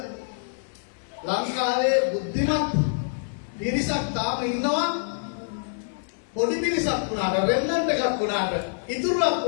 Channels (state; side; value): silent; right; 56 dB below the other